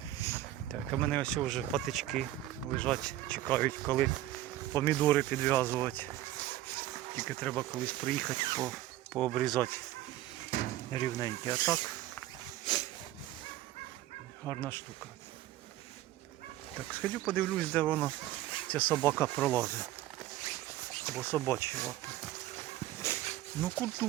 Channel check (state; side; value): quieter; left; 14.5 dB